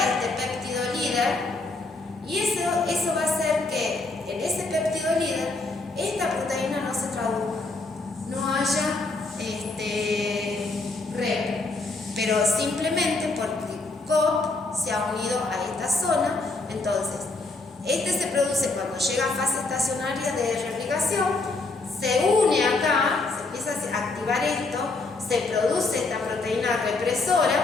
péptido líder y eso va a hacer que en ese péptido líder esta proteína no se traduzca, no haya REP, pero simplemente porque COP se ha unido a esta zona. Entonces, se produce cuando llega a fase estacionaria de replicación, se une acá, se empieza a activar esto, se produce esta proteína represora,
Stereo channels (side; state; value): right; quieter; 3.4 dB